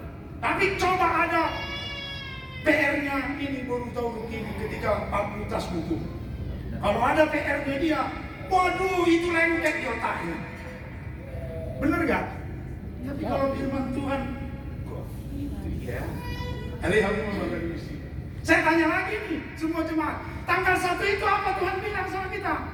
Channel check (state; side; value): identical; both; correlation 1.00